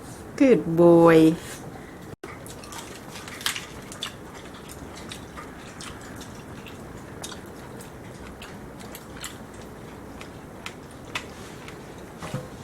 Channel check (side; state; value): both; identical; correlation 1.00